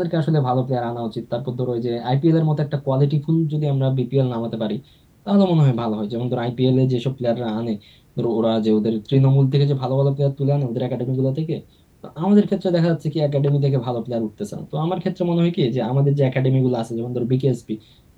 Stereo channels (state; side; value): identical; both; correlation 1.00